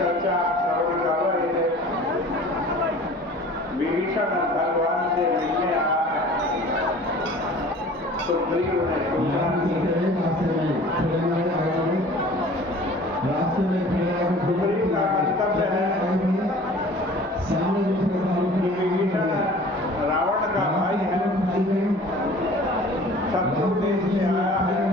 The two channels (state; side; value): normal; both; correlation 0.46